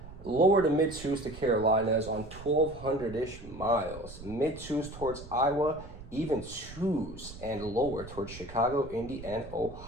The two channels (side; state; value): right; noise; rumble, 15 dB below the sound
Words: Lower to mid twos to Carolinas on 1,200-ish miles. Mid twos towards Iowa, even twos and lower towards Chicago, Indy, and